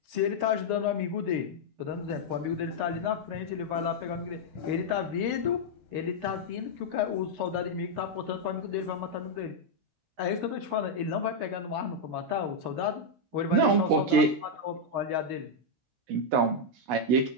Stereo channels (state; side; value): late; left; 16 ms